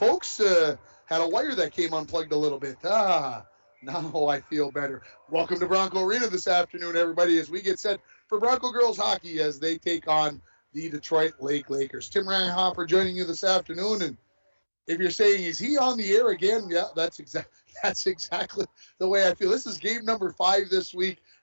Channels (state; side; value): inverted; both; correlation -1.00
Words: had a wire that came unplugged a little bit. Now I feel better. Welcome to Bronco Arena this afternoon, everybody, as we get set for Bronco girls hockey as they take on the Detroit Lake Lakers. Tim Reinhofer joining you this afternoon. And if you're saying, is he on the air again? Yeah, that's exactly the way I feel. This is game number 5 this week